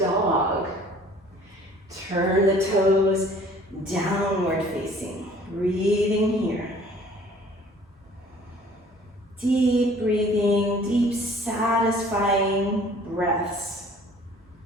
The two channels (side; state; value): both; normal; correlation 0.52